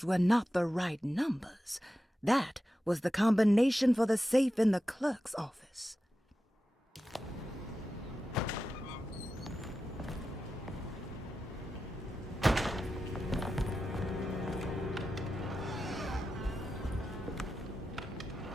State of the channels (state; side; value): normal; both; correlation 0.91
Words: were not the right numbers. That was the combination for the safe in the clerk's office.